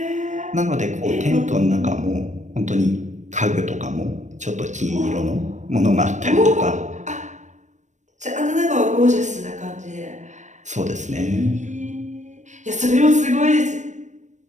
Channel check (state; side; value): late; left; 0.35 ms